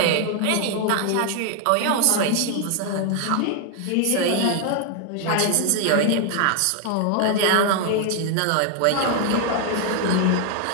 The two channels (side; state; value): both; different; correlation 0.00